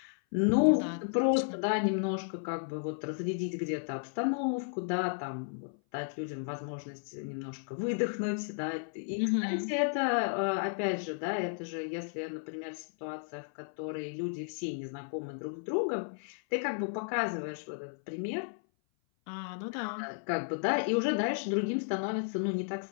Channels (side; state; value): right; silent; 55 dB below the other